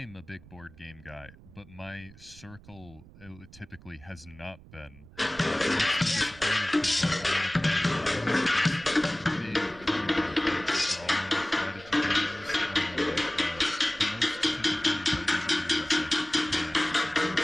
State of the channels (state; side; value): noise; right; rumble, 22 dB below the sound